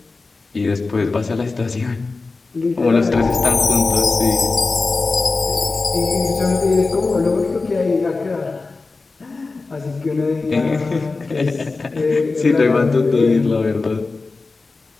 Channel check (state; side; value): quieter; right; 3.8 dB